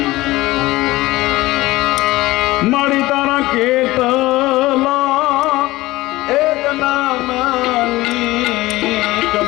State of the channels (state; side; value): quieter; right; 18.7 dB